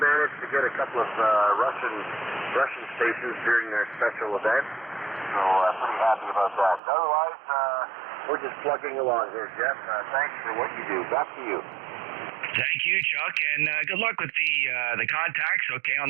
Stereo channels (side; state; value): left; drops out; at 6.8 s